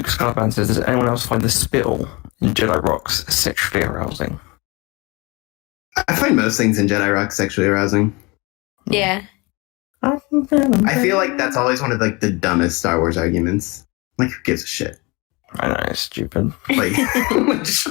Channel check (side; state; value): right; quieter; 26.4 dB